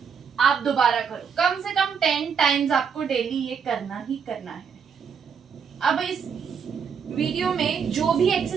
दोबारा करो। कम से कम 10 टाइम्स आपको डेली ये करना ही करना है। अब इस वीडियो में जो भी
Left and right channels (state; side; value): quieter; left; 6.7 dB